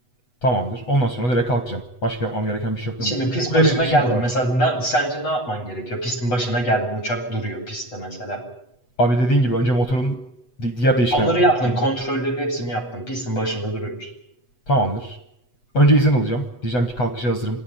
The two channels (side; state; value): right; late; 8.1 ms